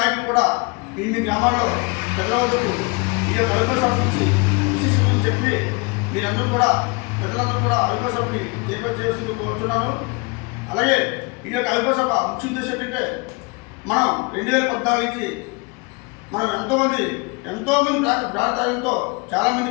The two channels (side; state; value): right; quieter; 29.4 dB